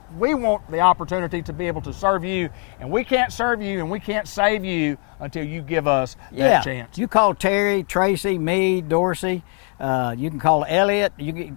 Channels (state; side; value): quieter; right; 39.7 dB